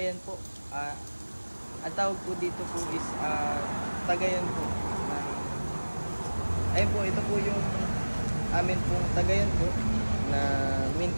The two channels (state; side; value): inverted; both; correlation -1.00